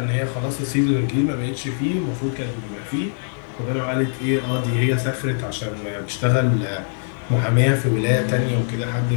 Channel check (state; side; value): silent; right; digital silence